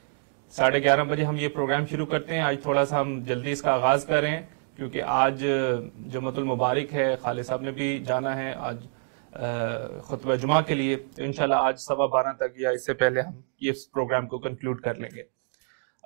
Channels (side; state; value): left; silent; digital silence